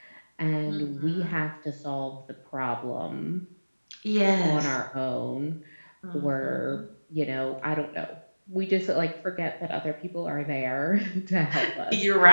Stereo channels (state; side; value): inverted; both; correlation -1.00